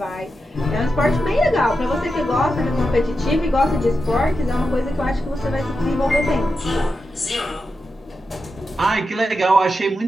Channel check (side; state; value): both; normal; correlation 0.89